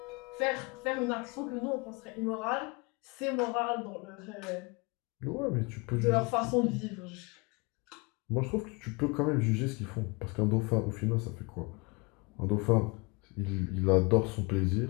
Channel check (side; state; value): right; quieter; 28.1 dB